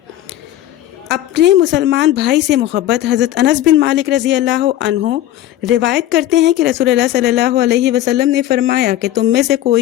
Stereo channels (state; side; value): quieter; right; 13.3 dB